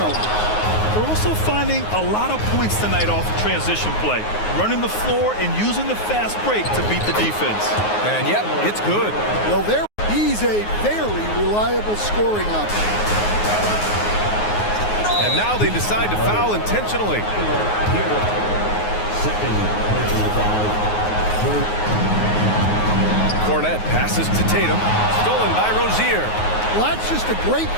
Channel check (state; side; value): late; right; 9.5 ms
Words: They're also finding a lot of points tonight off of transition play, running the floor and using the fast break to beat the defense. And yep, it's good. Well, he's a very reliable scoring option. And now they decide to foul intentionally. Cornette passes to Tatum, stolen by Rozier. Well, that's just a great